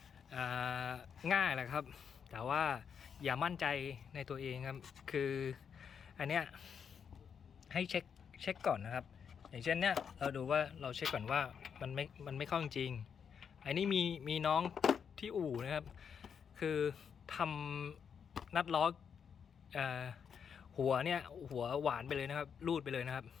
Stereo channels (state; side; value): quieter; right; 7.1 dB